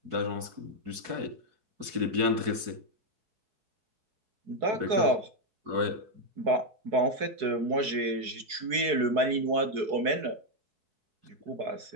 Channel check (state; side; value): late; left; 4.6 ms